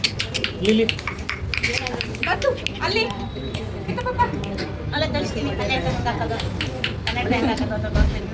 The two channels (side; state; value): both; identical; correlation 1.00